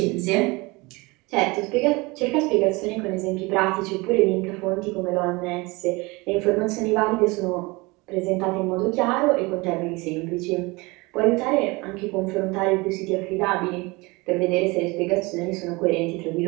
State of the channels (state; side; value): quieter; left; 24.6 dB